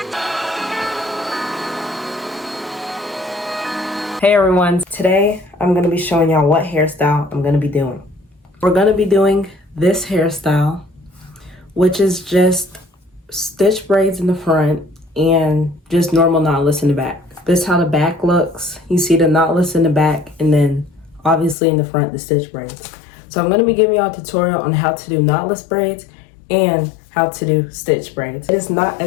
Hey everyone, today I'm going to be showing y'all what hairstyle I'm going to be doing. We're going to be doing this hairstyle, which is just stitch braids in the front and just normal knotless in the back. This is how the back looks. You see the knotless in the back and then obviously in the front the stitch braids. So I'm going to be giving y'all a tutorial on how to do knotless braids and how to do stitch braids. It's not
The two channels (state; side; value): drops out; right; at 21.6 s